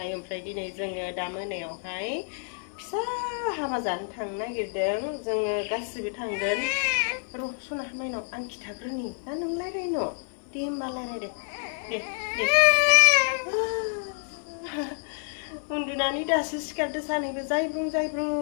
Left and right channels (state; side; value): silent; right; 59 dB below the other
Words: ओमफ्राय दिनै जोङो दा मोनायावहाय फिसा हाबा जानो थांनो नागिरदों जोङो गासिबो थांगोन र' सना माइनाव आं खिथाग्रोनि ना नों रायलायनो दे होमबा रायलायदे दे उन्दुनानै दासो सिखारदो सानैबो जायब्रुं